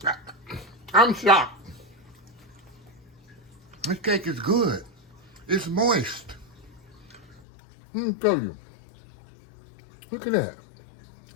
I'm shocked. This cake is good. It's moist. Let me tell you. Look at that.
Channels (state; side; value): drops out; right; at 7.4 s